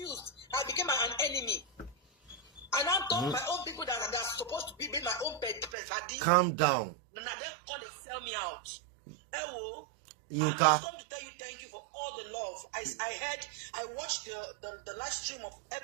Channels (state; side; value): drops out; left; at 5.7 s